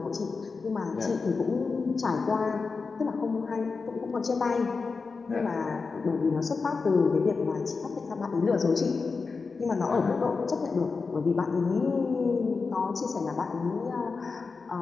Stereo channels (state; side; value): quieter; right; 4.6 dB